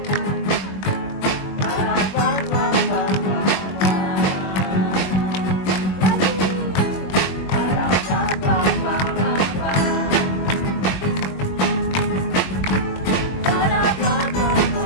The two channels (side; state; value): right; late; 21 ms